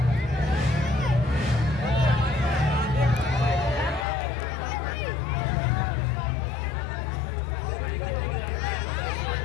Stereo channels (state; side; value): drops out; right; at 4.0 s